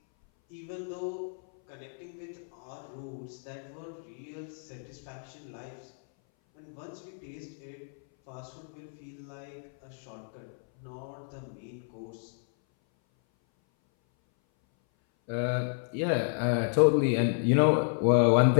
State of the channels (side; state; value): right; silent; 57 dB below the other